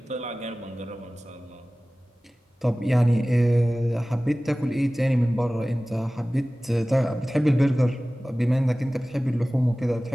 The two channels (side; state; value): both; normal; correlation 0.97